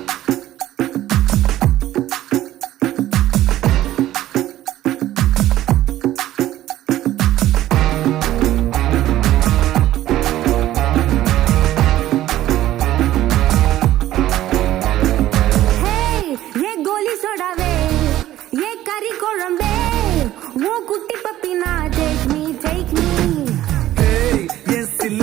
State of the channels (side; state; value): left; quieter; 14.0 dB